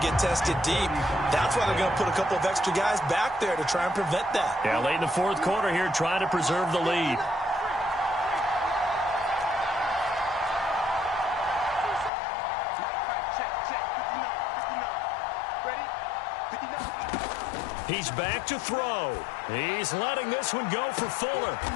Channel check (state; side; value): drops out; right; at 12.1 s